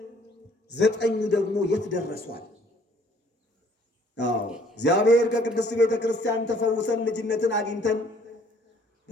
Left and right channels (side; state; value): both; normal; correlation 0.59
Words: 9 ደግሞ የት ደረሷል? እግዚአብሔር ከቅድስት ቤተ ክርስቲያን ተፈውሰን ልጅነትን አግኝተን